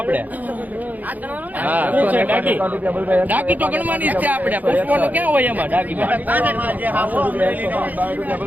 ડાકી તો ગણવાની જ છે આપણે પુષ્પોનું ક્યાં હોય એમાં ડાકી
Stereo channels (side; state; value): left; late; 0.081 ms